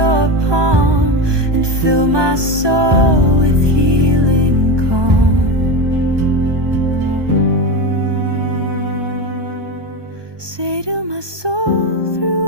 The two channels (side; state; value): left; late; 1.2 ms